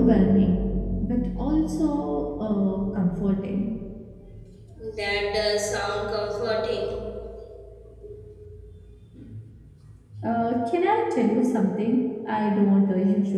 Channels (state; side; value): identical; both; correlation 1.00